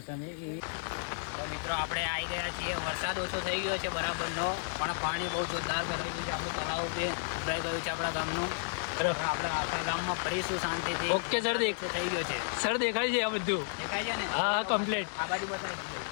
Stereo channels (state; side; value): silent; right; 56 dB below the other